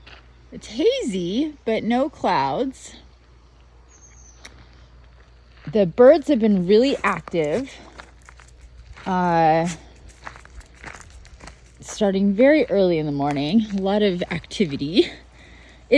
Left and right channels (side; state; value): both; identical; correlation 1.00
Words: It's hazy, but no clouds. The birds have been really active. Starting very early in the morning. A lot of activity.